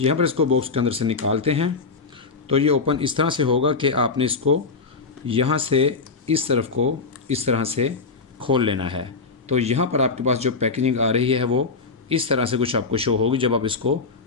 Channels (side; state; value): right; quieter; 4.3 dB